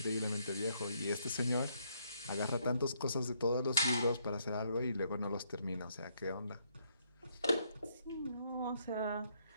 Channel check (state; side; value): inverted; both; correlation -0.72